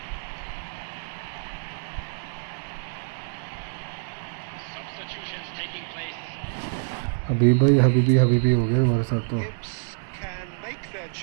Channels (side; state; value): left; silent; digital silence